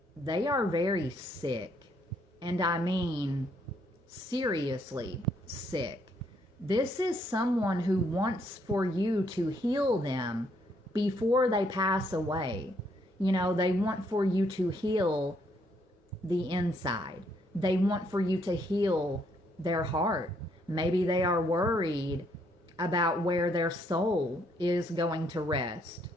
they are very sick. And I mean seriously sick. This is someone who wants for you to heal them before they pass away. You know, they want for you to heal the inside. They want for you to heal their heart. Maybe they are worried about where their soul is going to rest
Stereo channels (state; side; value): normal; both; correlation 0.71